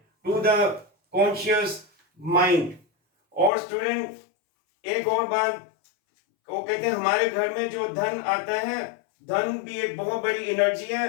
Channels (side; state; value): right; drops out; at 3.5 s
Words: to the conscious mind. और student एक और बात वो कहते हैं हमारे घर में जो धन आता है, धन भी एक बहुत बड़ी एनर्जी है।